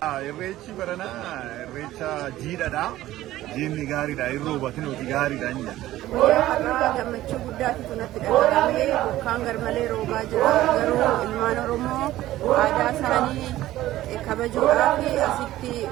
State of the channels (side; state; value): left; quieter; 15.1 dB